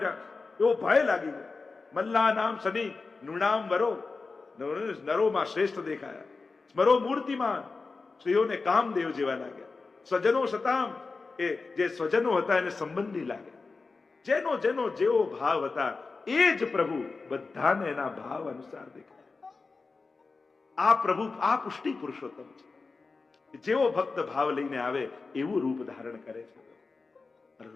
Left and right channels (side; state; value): right; quieter; 4.1 dB